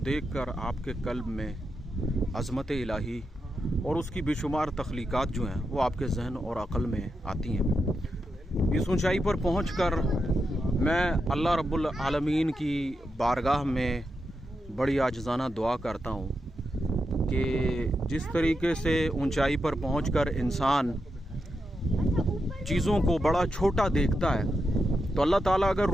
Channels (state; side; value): normal; both; correlation 0.86